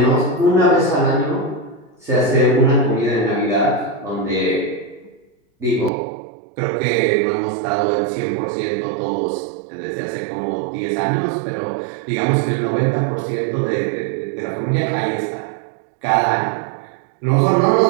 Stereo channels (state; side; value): drops out; left; at 5.9 s